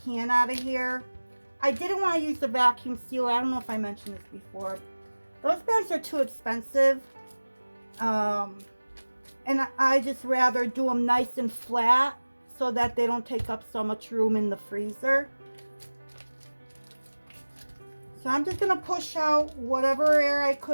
out of here. I didn't want to use the vacuum sealer. I don't know if I mentioned this before. Those bags are too expensive. And I just rather do them nice and flat so that they don't take up so much room in the freezer. So I'm just going to push out whatever air I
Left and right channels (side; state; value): both; inverted; correlation -1.00